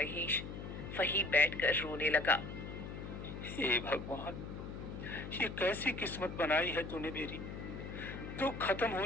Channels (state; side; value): noise; left; hum, 8 dB below the sound